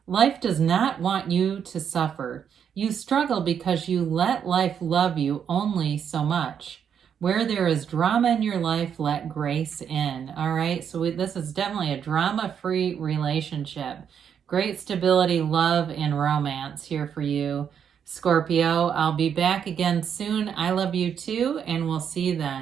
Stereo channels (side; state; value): left; quieter; 8.0 dB